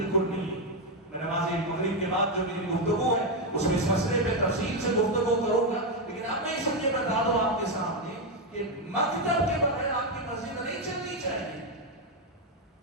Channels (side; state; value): both; normal; correlation 0.05